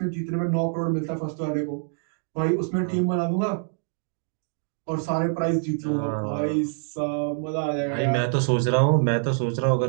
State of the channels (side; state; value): left; silent; digital silence